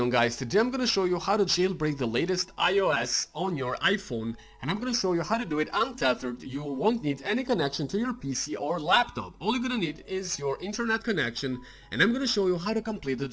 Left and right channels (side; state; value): both; identical; correlation 1.00